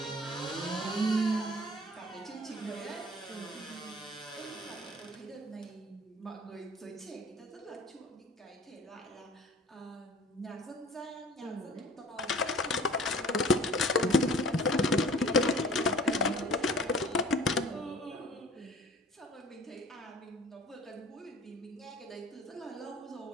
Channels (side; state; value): both; normal; correlation 0.47